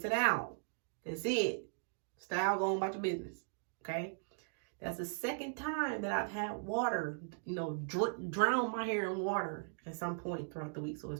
it out. That's it. Style, go on about your business. Okay? That's the second time that I've had water, drown my hair in water at some point throughout the week. So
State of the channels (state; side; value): silent; left; digital silence